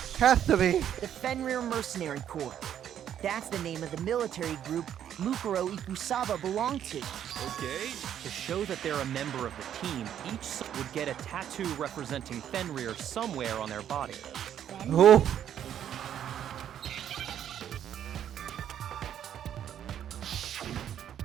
Has to be. The Fenrir Mercenary Corps. That's the name of the military group Mukuro Ikusaba belonged to. Okay. To show that they're a member of the team, each would get a tattoo representing Fenrir somewhere on their body. Oh.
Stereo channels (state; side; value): quieter; left; 10.0 dB